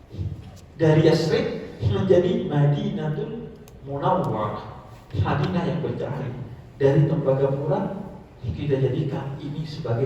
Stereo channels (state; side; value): identical; both; correlation 1.00